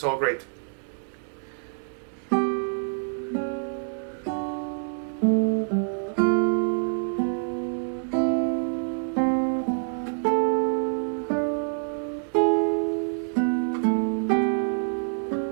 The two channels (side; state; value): left; silent; digital silence